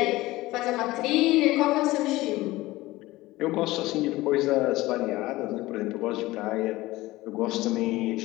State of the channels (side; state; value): right; quieter; 18.6 dB